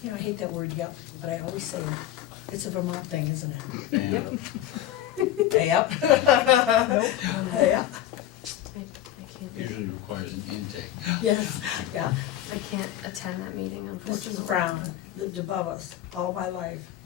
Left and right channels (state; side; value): quieter; right; 12.7 dB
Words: You know, I hate that word yep, but I always say it. It's a Vermont thing, isn't it? And Yep. Yep. I can't, usually requires an intake. Yes, yeah. I can't attend that meeting unfortunately. Mrs. Brown lived above us all my life,